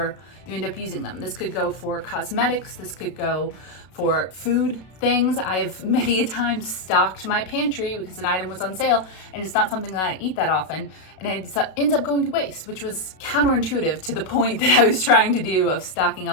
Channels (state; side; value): late; right; 32 ms